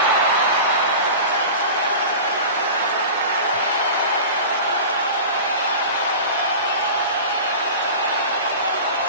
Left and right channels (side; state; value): both; inverted; correlation -0.34